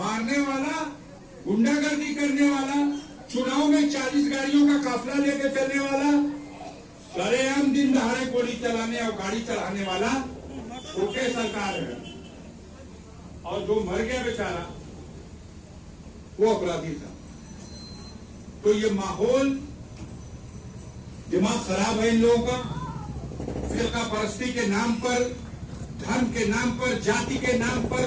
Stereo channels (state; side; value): identical; both; correlation 1.00